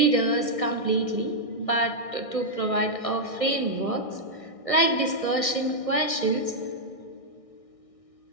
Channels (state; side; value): late; right; 1.6 ms